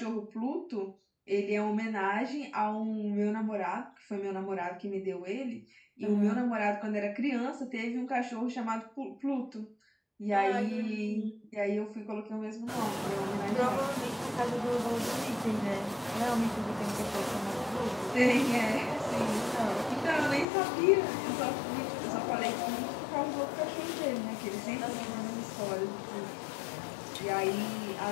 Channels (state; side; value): drops out; right; at 20.5 s